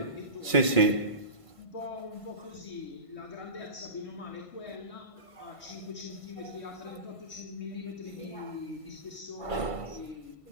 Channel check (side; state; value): right; late; 1.5 ms